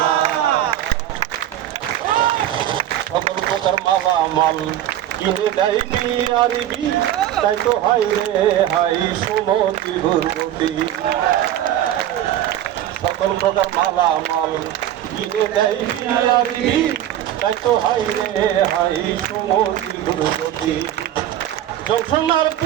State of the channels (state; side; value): quieter; left; 12.0 dB